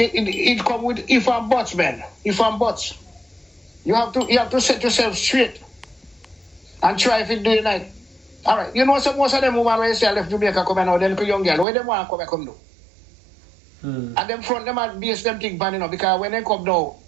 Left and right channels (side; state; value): left; drops out; at 11.7 s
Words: come with if and buts, man. If and buts. You have to set yourself straight and try if it do it night. Alright, you know so most of them women when you say left Jamaica come now, then young girl, where them want to come do? And them front them are base them thing pan, you know, because when they come now,